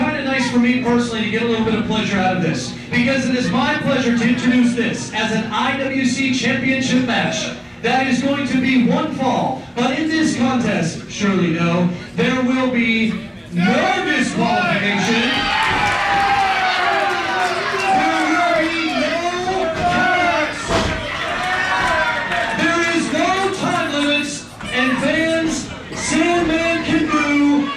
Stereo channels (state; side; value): identical; both; correlation 1.00